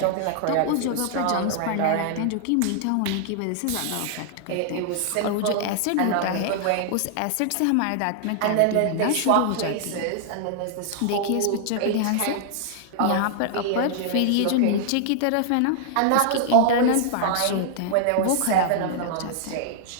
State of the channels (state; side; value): different; both; correlation -0.01